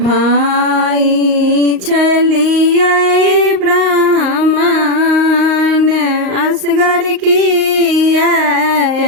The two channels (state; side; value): late; left; 38 ms